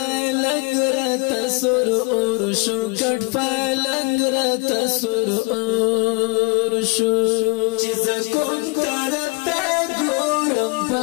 را تسور اور شو کټ پلنګ را تسور اور شو چې زکون ترته ګورم په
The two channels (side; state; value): right; quieter; 29.9 dB